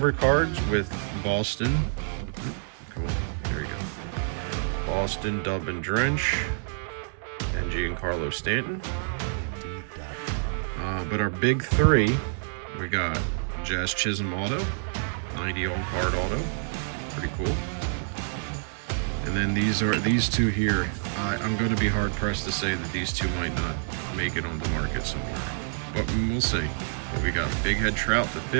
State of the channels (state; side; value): silent; left; 60 dB below the other